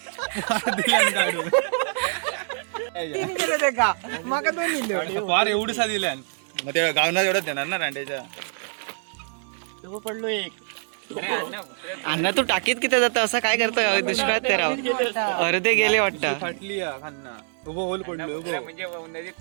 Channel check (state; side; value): silent; left; digital silence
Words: फार एवढसा दिल्या मग त्या गावना एवढंच देणार ना रांडेच्या. पडलो एक. अण्णा तू टाकीत किती जातं, असं काय करतं दुष्काळात ते राव. अर्धे गेले वाटतं. फाटली खान्ना उभं होल पडलो उभं